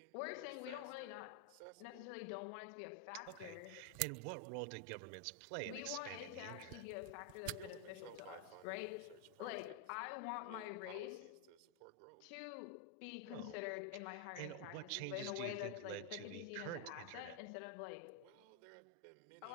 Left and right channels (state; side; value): different; both; correlation 0.00